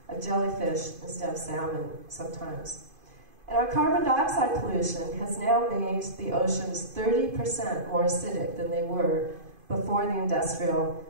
of jellyfish instead of salmon sometimes. And our carbon dioxide pollution has now made the oceans 30% more acidic than they were before the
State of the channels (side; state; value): left; late; 2.5 ms